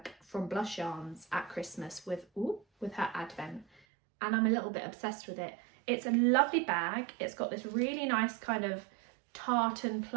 from Blush Yarns at Christmas with her advent, and I'm a little bit obsessed with it. It's a lovely bag. It's got this really nice kind of tartan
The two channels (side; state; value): left; drops out; at 3.8 s